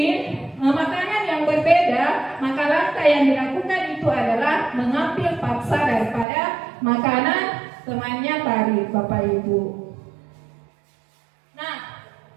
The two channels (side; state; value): left; drops out; at 6.2 s